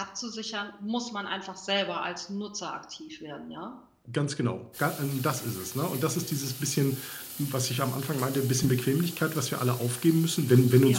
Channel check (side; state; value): both; identical; correlation 1.00